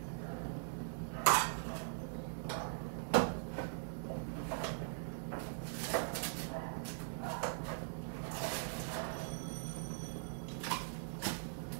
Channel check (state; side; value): silent; left; digital silence